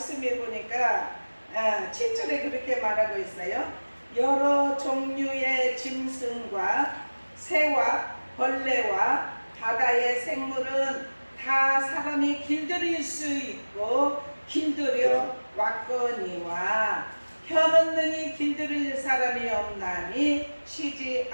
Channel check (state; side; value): inverted; both; correlation -1.00